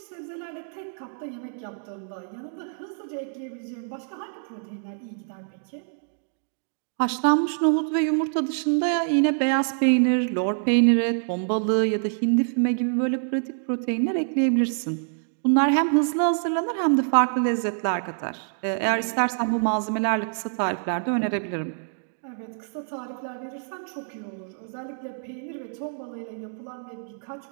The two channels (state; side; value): silent; left; digital silence